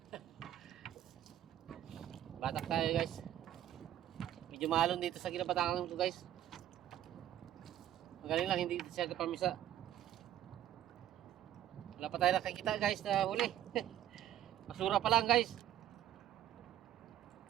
Batak tayo guys. Medyo mahalon dito sa Ginabatakan ko guys. Magaling lang, hindi siya kapamisa. Wala pa tayo nakikita guys na huli. Basura pa lang guys.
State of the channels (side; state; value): left; quieter; 11.9 dB